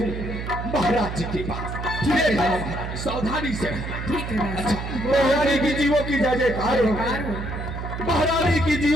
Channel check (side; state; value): right; noise; hum, 6 dB below the sound